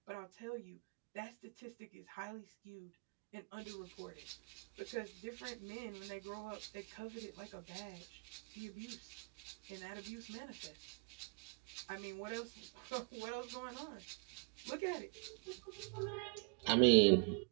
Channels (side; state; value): left; quieter; 35.7 dB